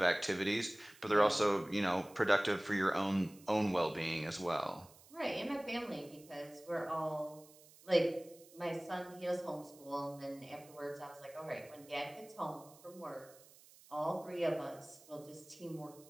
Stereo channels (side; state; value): right; noise; hiss, 23 dB below the sound